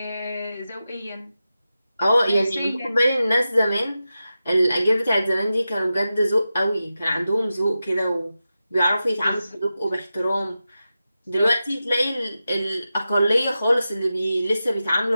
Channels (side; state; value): both; inverted; correlation -0.92